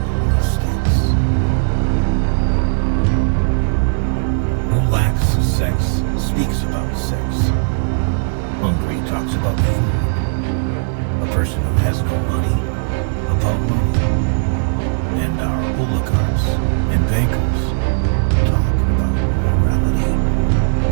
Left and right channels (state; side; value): silent; left; 64 dB below the other